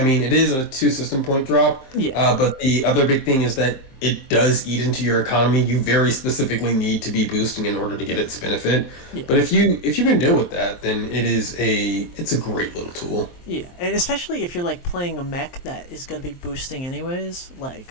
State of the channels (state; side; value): late; right; 23 ms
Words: mean, it is a 2 system point drop. Yeah. But the other big thing is that it does eat into your economy. You very specifically need to be boosting in order to get its benefit. Yeah. But if you can deal with that, then it's a great little tool. Yeah, and especially if you're like playing a mech that is gonna be boosting anyways,